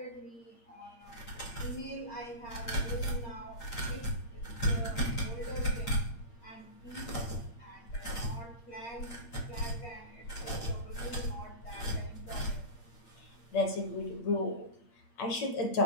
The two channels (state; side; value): late; right; 8.6 ms